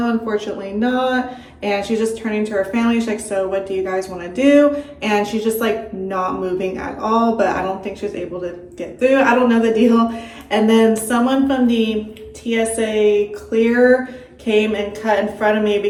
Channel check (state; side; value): identical; both; correlation 1.00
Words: unfortunately not. And she's just turning to her family. She's like, so what do you guys want to do? And she's just like not moving at all, but I don't think she was able to get through. I don't know the deal. And then someone from the TSA clear came and cut in front of me